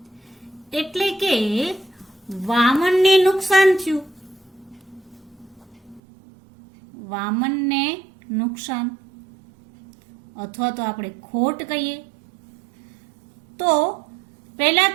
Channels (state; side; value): drops out; left; at 6.0 s